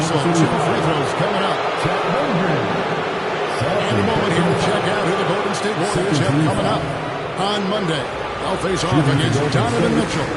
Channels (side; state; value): both; identical; correlation 1.00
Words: 2 free throws coming up. And a moment here to check out who the Golden State Warriors have coming up. On Monday, they'll face off against Donovan Mitchell